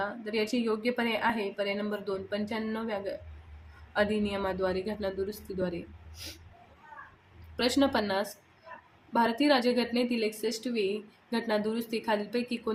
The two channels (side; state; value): both; identical; correlation 1.00